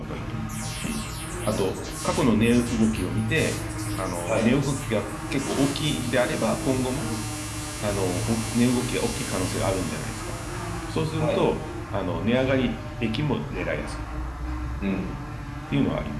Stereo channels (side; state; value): both; identical; correlation 1.00